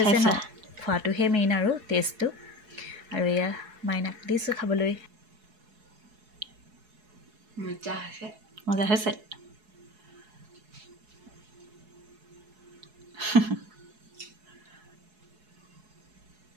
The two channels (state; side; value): late; left; 4.7 ms